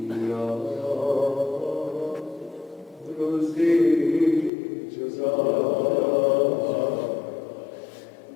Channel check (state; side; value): drops out; right; at 4.5 s